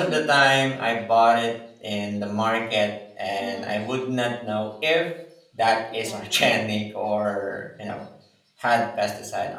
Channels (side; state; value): both; identical; correlation 1.00